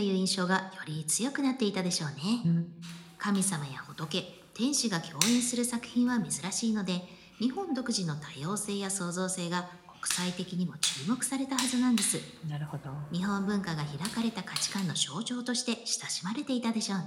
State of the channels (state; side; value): identical; both; correlation 1.00